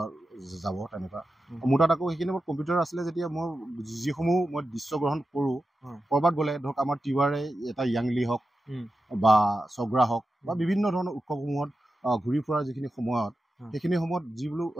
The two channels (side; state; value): both; normal; correlation 0.91